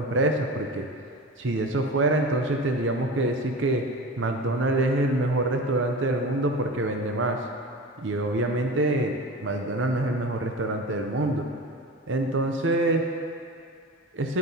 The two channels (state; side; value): normal; both; correlation 0.32